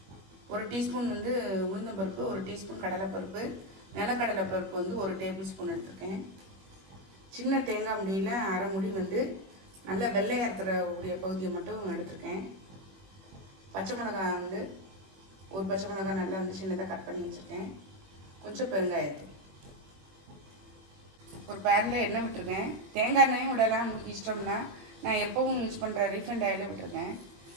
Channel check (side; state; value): left; late; 21 ms